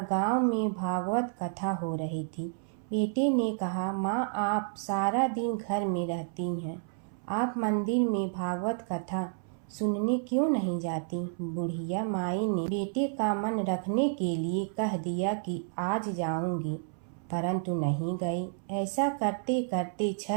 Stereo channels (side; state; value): left; silent; 57 dB below the other